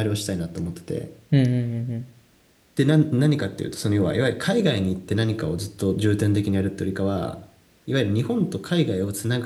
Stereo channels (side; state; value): both; identical; correlation 1.00